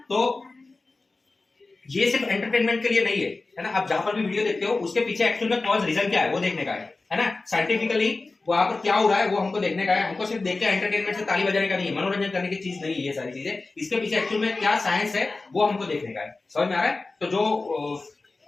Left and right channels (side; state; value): right; quieter; 3.5 dB